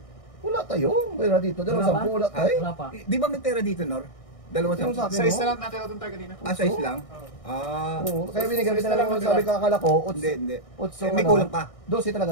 Wala tayo. Wala dito. 10 wala tayo. Wala pa. Di ba may pera dito, Nor? 2-10. Yung sa akin, Size no? na lang natin ito tayo kanina. Size lang? Oo. Oo. Kaya binigyan kita na lang sabi ka akala ko. Hindi. 8 May kulang pa. 12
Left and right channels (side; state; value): right; late; 1.6 ms